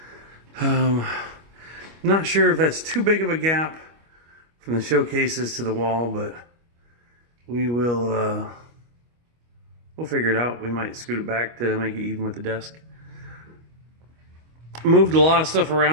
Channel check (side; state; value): left; late; 25 ms